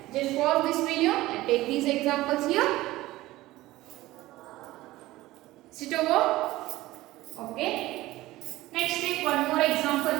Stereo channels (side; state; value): left; quieter; 17.4 dB